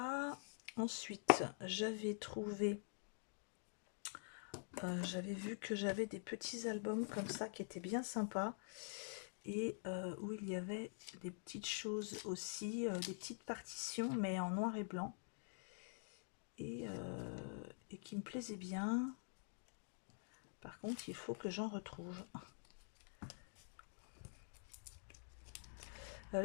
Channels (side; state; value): right; silent; digital silence